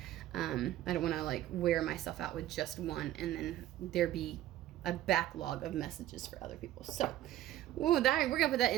I don't want to like wear myself out with just one, and then there be a backlog of messages for other people. So, we're gonna put that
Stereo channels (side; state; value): left; quieter; 13.5 dB